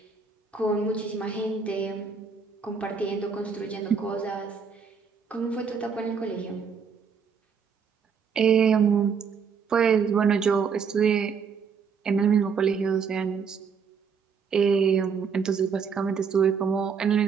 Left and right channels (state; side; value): quieter; left; 6.1 dB